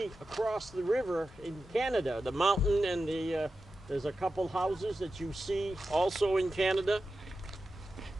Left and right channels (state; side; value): normal; both; correlation 0.92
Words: across the river in Canada, the mountain, and there's a couple houses that you see also in Canada.